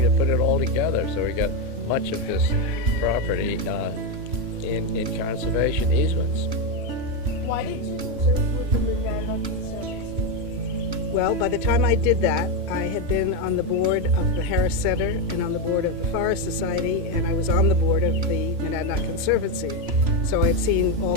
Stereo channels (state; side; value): late; left; 3.0 ms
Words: to put it all together. So we got much of this property in conservation easements. Why did you conserve with the Monadnock Conservancy? Well, by the time I did that, I had been on the board of the Harris Center and on the board of the Forest Society, and I was on the board of the Monadnock Conservancy. So I'd seen all